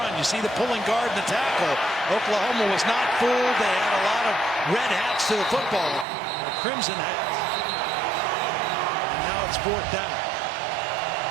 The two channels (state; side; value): drops out; left; at 6.1 s